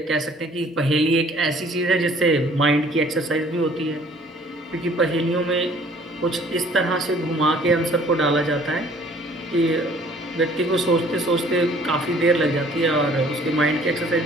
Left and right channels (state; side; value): normal; both; correlation 0.56